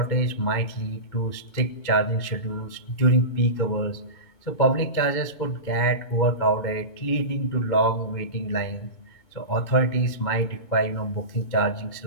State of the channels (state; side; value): late; right; 2.2 ms